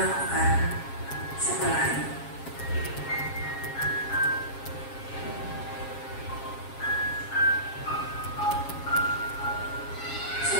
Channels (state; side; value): late; right; 7.4 ms